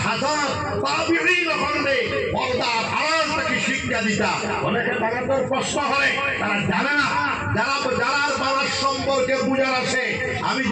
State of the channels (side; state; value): both; identical; correlation 1.00